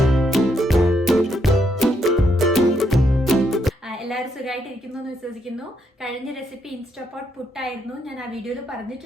എല്ലാവരും സുഖമായിട്ടിരിക്കുന്നു എന്ന് വിശ്വസിക്കുന്നു. കഴിഞ്ഞ റെസിപ്പി ഇൻസ്റ്റാപോട്ട് പുട്ടായിരുന്നു. ഞാൻ ആ വീഡിയോയിൽ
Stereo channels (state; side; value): normal; both; correlation 0.76